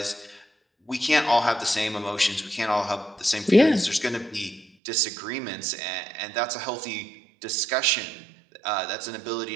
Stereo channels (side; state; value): left; drops out; at 4.7 s